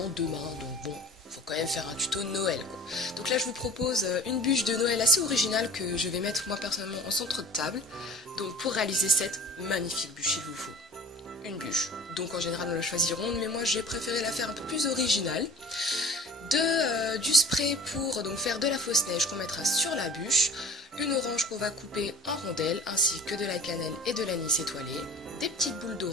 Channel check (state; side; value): normal; both; correlation 0.43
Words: demain, donc bon, faut quand même faire un tuto Noël quoi. Donc là je vous propose une bûche de Noël assez originale que je vais mettre moi personnellement en centre de table. Donc pour réaliser cette magnifique bûche, il vous faut une bûche. Donc en général on la choisit ronde, mais moi j'ai préféré la faire un peu plus originale. Du spray pour donc faire de la fausse neige qu'on mettra sur la bûche, une orange qu'on va couper en rondelles, ainsi que de la cannelle et de l'anis étoilé, des petites boules